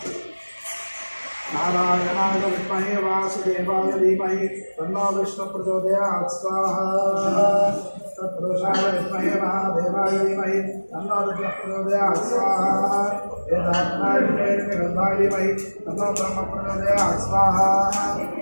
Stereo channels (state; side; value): inverted; both; correlation -1.00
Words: नारायणाय विद्महे वासुदेवाय धीमहि तन्नो विष्णु प्रचोदयात् स्वाहा। तत्पुरुषाय विद्महे महादेवाय धीमहि तन्नो रुद्रः प्रचोदयात् स्वाहा। वेदात्माय धीमहि तन्नो ब्रह्म प्रचोदयात् स्वाहा।